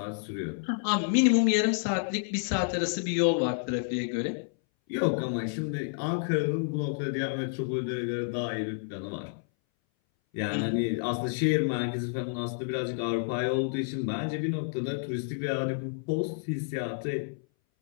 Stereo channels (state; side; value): silent; right; 58 dB below the other